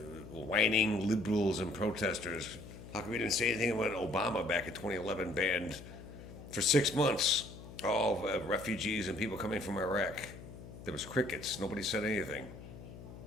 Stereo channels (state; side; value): noise; left; hum, 14 dB below the sound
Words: whining liberals and protesters, how come you didn't say anything when Obama back in 2011 banned for 6 months all refugees and people coming from Iraq? There was crickets. Nobody said anything.